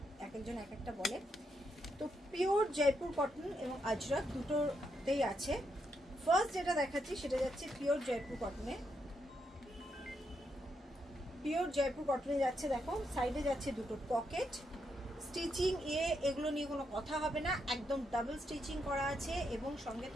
এক একজন এক একটা বলে। তো পিওর জয়পুর কটন এবং আজরাক দুটোতেই আছে। ফার্স্ট যেটা দেখাচ্ছি সেটা যাচ্ছে পিওর জয়পুর কটনে। পিওর জয়পুর কটনে যাচ্ছে, দেখো সাইডে যাচ্ছে দুটো পকেট। স্টিচিং এগুলো নিয়ে কোনো কথা হবে না, একদম ডাবল স্টিচিং করা আছে এবং সঙ্গে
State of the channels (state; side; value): normal; both; correlation 0.80